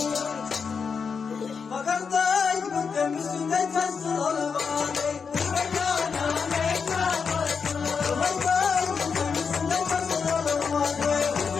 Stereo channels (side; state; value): right; quieter; 5.8 dB